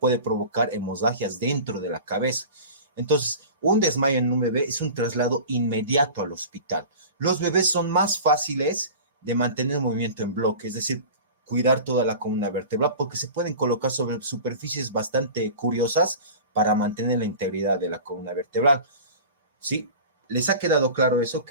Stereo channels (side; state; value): both; inverted; correlation -0.36